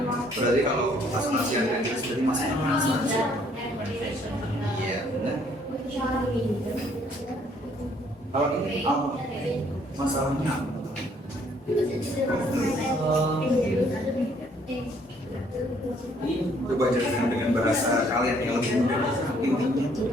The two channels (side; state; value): both; normal; correlation 0.64